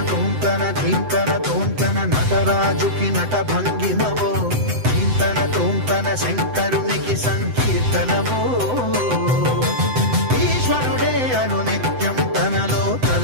ధీంతన తోంతన నటరాజుకి నట భంగిమవో ధీంతన తోంతన శంకరునికి సంకీర్తనవో ఈశ్వరుడే అనునిత్యం తనలో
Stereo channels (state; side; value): late; left; 7.9 ms